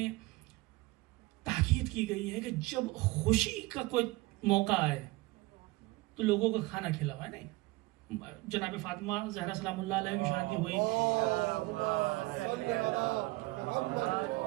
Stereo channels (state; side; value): quieter; left; 21.3 dB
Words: تاکید کی گئی ہے کہ جب خوشی کا کوئی موقع آئے تو لوگوں کو کھانا کھلاوائے. نہیں، جناب فاطمہ زہرا سلام اللہ علیہ کی شادی ہوئی،